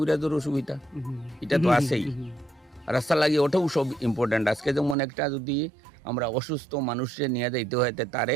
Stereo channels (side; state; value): left; drops out; at 5.0 s